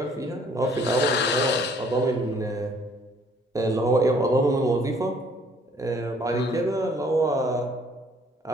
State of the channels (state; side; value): normal; both; correlation 0.60